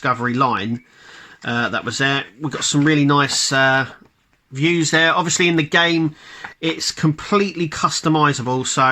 line that was there. We've got some really nice views there. Obviously in the game it's completely customizable,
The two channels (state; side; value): identical; both; correlation 1.00